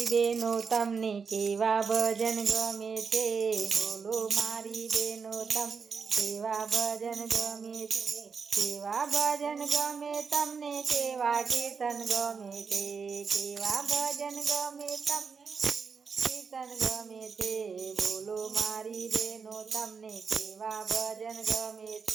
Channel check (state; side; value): quieter; left; 5.6 dB